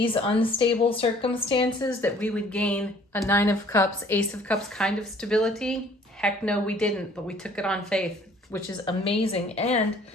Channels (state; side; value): normal; both; correlation 0.56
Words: unstable circumstances that we would gain a 9 of Cups, Ace of Cups kind of stability? Heck no, we didn't, but we took it on faith, which is amazing. And